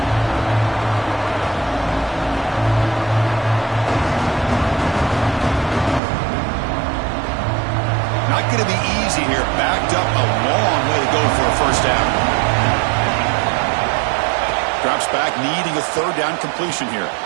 Not going to be easy here. Backed up a long way to go for a first down. Drops back, needing a 3rd down completion here.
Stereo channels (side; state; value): left; drops out; at 6.0 s